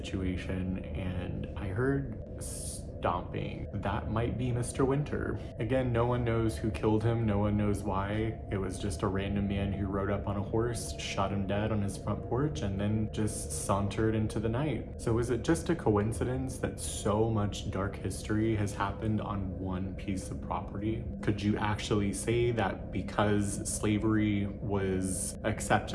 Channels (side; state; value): both; identical; correlation 1.00